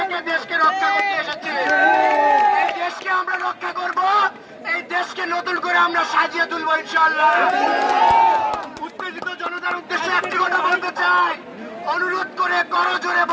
দেশকে রক্ষা করতে এসেছি। এই দেশকে আমরা রক্ষা করব, এই দেশকে নতুন করে আমরা সাজিয়ে তুলবো ইনশাআল্লাহ। উত্তেজিত জনতার উদ্দেশ্যে একটি কথা বলতে চাই, অনুরোধ করে করজোরে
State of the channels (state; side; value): identical; both; correlation 1.00